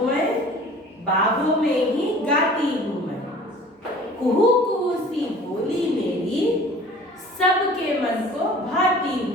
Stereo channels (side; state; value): both; normal; correlation 0.47